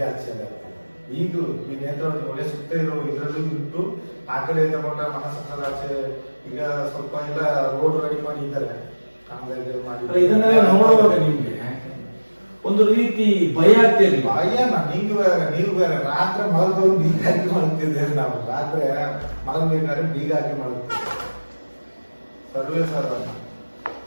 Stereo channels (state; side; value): inverted; both; correlation -1.00